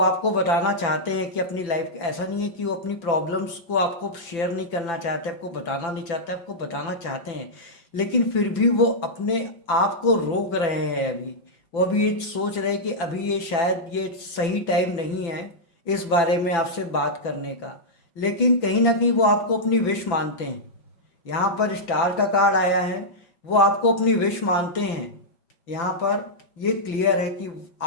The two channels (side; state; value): right; late; 5.9 ms